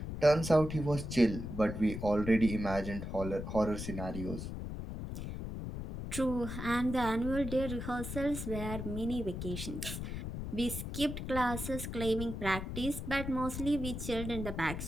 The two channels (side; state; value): left; noise; rumble, 6 dB below the sound